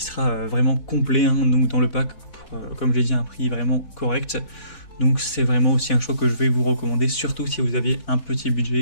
sera vraiment complet, hein, donc dans le pack, comme je l'ai dit, un prix vraiment correct. Donc c'est vraiment aussi un choix que je vais vous recommander, surtout si vous avez un petit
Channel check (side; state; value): right; late; 3.7 ms